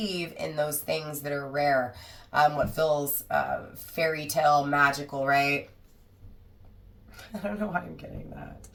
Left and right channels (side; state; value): both; identical; correlation 1.00